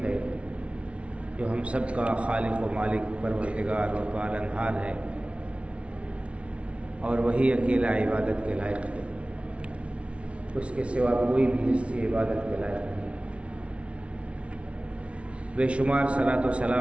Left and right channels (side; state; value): left; late; 0.061 ms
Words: ہے، جو ہم سب کا خالق و مالک پروردگار و پالنہار ہے، اور وہی اکیلا عبادت کے لائق ہے، اس کے سوا کوئی بھی ہستی عبادت کے لائق نہیں۔ بے شمار صلاۃ و